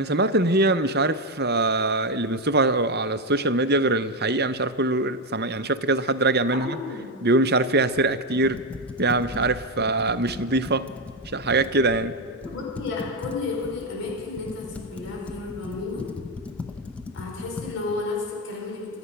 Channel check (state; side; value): normal; both; correlation 0.07